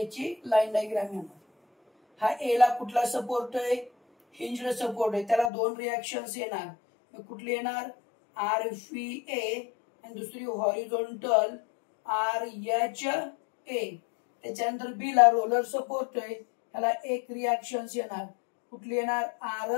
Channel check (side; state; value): right; drops out; at 5.5 s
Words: लाईन डायग्राम येणार. हा ए ला कुठला सपोर्ट आहे हिंज्ड सपोर्ट आहे, त्याला दोन रिएक्शन्स येणार. कुठली येणार आर फी ए आणि दुसरी हॉरिझॉन्टल आर एच ए. त्याच्यानंतर बी ला रोलर सपोर्ट आहे ह्याला एक रिएक्शन्स येणार. कुठली येणार